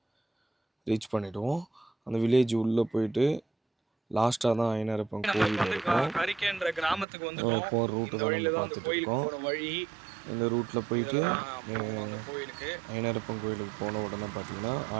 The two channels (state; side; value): drops out; left; at 7.1 s